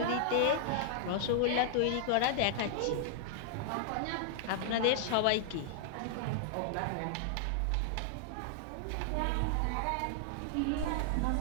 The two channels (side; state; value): both; different; correlation -0.01